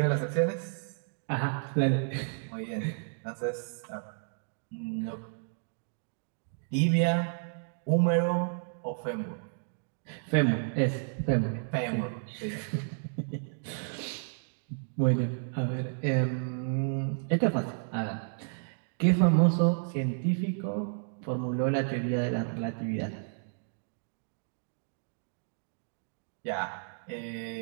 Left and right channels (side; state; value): left; silent; digital silence